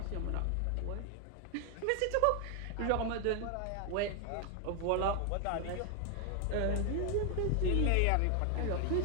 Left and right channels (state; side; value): different; both; correlation 0.00